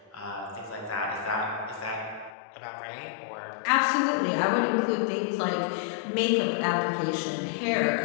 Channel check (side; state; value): right; drops out; at 2.4 s